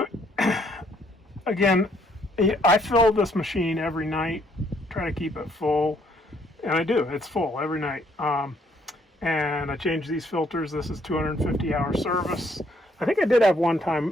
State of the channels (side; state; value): both; normal; correlation 0.67